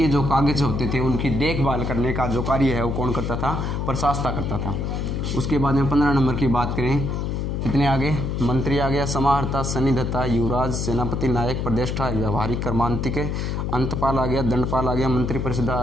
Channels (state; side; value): noise; left; hum, 1 dB below the sound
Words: जो कागज होते थे उनकी देखभाल करने का जो कार्य है वो कौन करता था? प्रशासता करता था। उसके बाद में 15 नंबर की बात करें, कितने आगे? मंत्री आ गया, समाहर्ता, सन्निधत्ता, युवराज, सेनापति, नायक, प्रदेष्टा, व्यवहारिक, कर्मांतिक, अंतपाल आ गया, दंडपाल आ गया, मंत्री परिषद